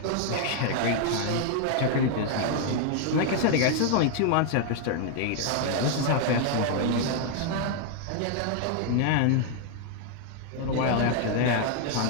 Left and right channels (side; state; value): both; different; correlation 0.00